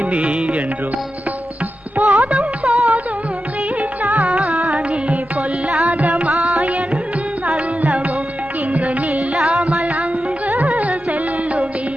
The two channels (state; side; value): normal; both; correlation 0.91